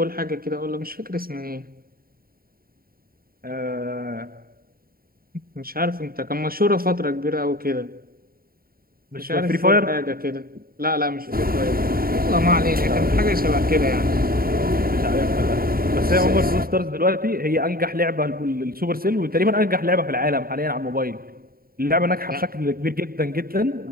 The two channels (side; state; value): left; late; 0.43 ms